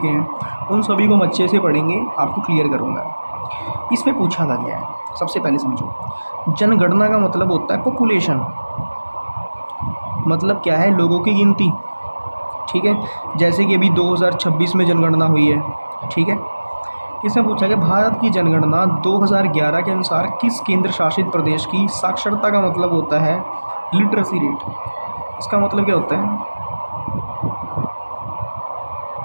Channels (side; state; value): both; inverted; correlation -1.00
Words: हैं उन सभी को हम अच्छे से पढ़ेंगे, आपको क्लियर करूँगा। इसमें पूछा था गया है, सबसे पहले समझो, जनगणना का मतलब होता है पॉपुलेशन। मतलब क्या है? लोगों की गिनती। ठीक है, जैसे कि अभी 2026 में जनगणना हुई है। ठीक है, इसमें पूछा गया भारत की जनगणना 2011 के अनुसार किस केंद्र शासित प्रदेश की साक्षरता का मतलब होता है लिटरेसी रेट। इसका मतलब क्या होता है?